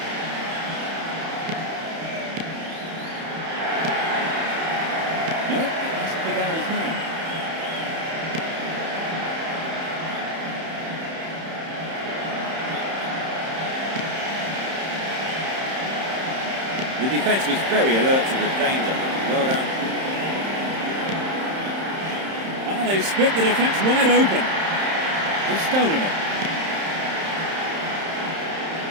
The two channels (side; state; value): left; late; 31 ms